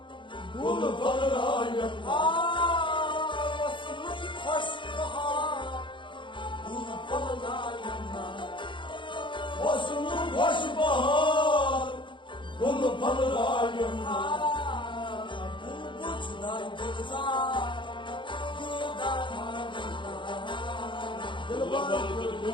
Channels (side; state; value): right; late; 0.23 ms